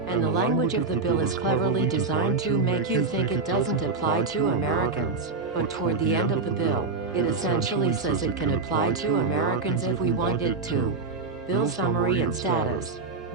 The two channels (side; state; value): left; quieter; 4.1 dB